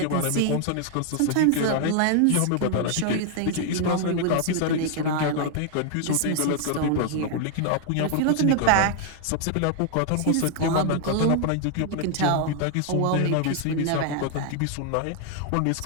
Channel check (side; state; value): both; different; correlation 0.00